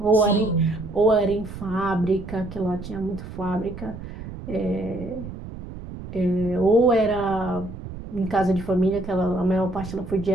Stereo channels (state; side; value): noise; right; rumble, 11 dB below the sound